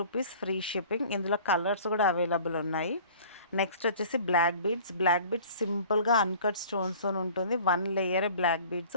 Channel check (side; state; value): both; inverted; correlation -0.47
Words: free shipping. ఇందులో కలర్స్ కూడా అవైలబుల్ ఉన్నాయి. నెక్స్ట్ వచ్చేసి బ్లాక్ బీడ్స్. బ్లాక్ బీడ్స్ సింపుల్గా అన్కట్ స్టోన్స్తో ఉంటుంది. 1 లేయర్ బ్లాక్ బీడ్స్.